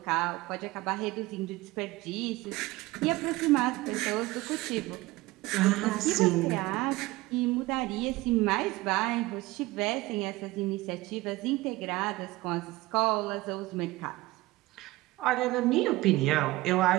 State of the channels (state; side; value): quieter; left; 19.5 dB